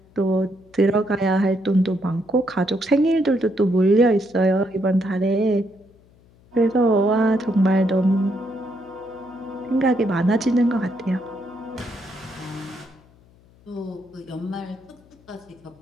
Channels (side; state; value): left; noise; hum, 29 dB below the sound